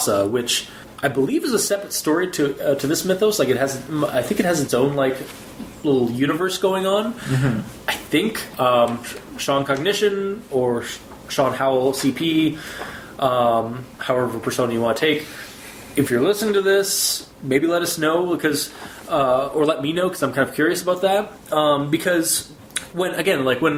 which I believe is a separate story to this mythos. Like I think it has its own like little universe going on. I think ShawnCognition or ShawnHowellsCP, however persona you want to take. If you're listening to this, maybe let us know or let me know because I'm kind of curious about that. Because when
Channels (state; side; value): identical; both; correlation 1.00